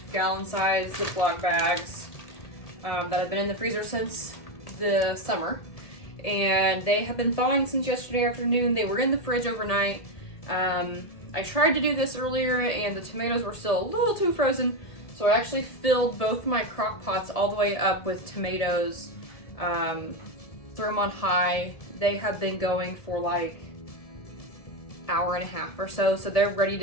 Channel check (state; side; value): late; right; 1.7 ms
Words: gallon-sized Ziploc bags that have been in the freezer since the summer. And they have been thawing since yesterday afternoon. They were in the fridge overnight. I tried to do this earlier and the tomatoes were still a little too frozen. So I actually filled both my crock pots all the way up with tomatoes. Threw them on high. They have been going for like hour and a half or so. So they're ready